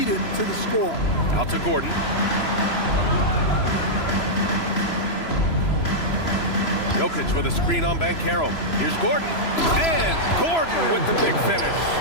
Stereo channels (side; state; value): right; late; 3.0 ms